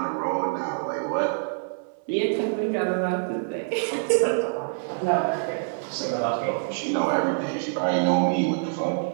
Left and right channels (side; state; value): left; silent; digital silence